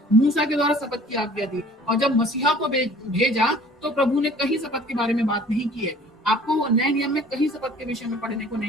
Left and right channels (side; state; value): both; normal; correlation 0.51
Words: मूसा के द्वारा शपथ की आज्ञा दी, और जब मसीहा को भेजा तो प्रभु ने कहीं शपथ के बारे में बात नहीं की है। आपको नए नियम में कहीं शपथ के विषय में पढ़ने को